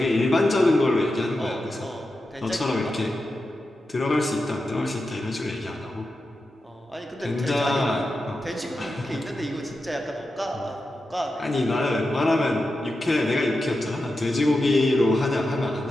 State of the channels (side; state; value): both; normal; correlation 0.90